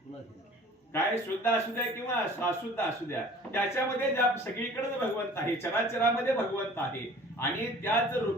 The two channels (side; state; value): both; normal; correlation 0.47